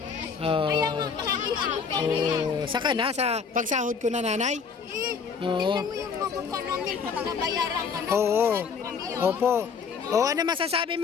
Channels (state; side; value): quieter; right; 5.9 dB